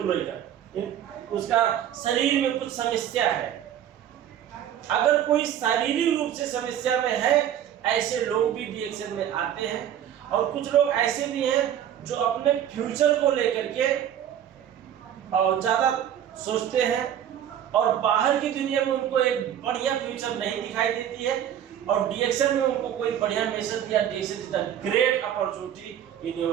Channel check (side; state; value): left; quieter; 10.3 dB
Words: लेकर उसका शरीर में कुछ समस्या है। अगर कोई शारीरिक रूप से समस्या में है, ऐसे लोग भी डीएक्सएन में आते हैं। और कुछ लोग ऐसे भी हैं जो अपने फ्यूचर को लेकर के और ज्यादा सोचते हैं और बाहर की दुनिया में उनको एक बढ़िया फ्यूचर नहीं दिखाई देती है, और डीएक्सएन में उनको कोई बढ़िया मैसेज दिया, DXN is the great opportunity in